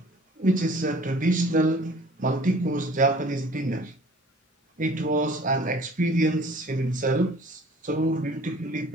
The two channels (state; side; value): normal; both; correlation 0.50